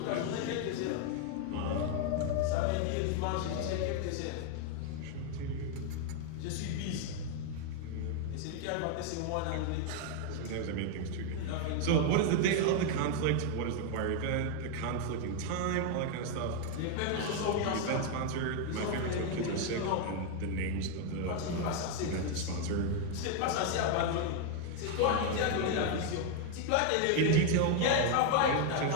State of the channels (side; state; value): both; different; correlation 0.01